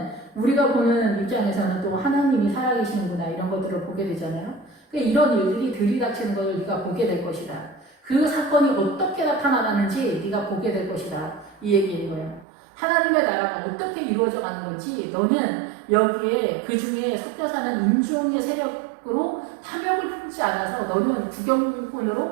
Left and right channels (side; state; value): left; drops out; at 12.5 s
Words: 우리가 보는 입장에서는 또 하나님이 살아계시는구나 이런 것들을 보게 되잖아요. 그러니까 이런 일들이 들이닥치는 것을 네가 보게 될 것이다. 그 사건이 어떻게 나타나는지 네가 보게 될 것이다. 이 얘기인 거예요. 하나님의 나라가 어떻게 이루어져 가는 건지 너는 여기에 그 중에 섞여 사는 인종의 세력으로 탐욕을 품지 않아서 너는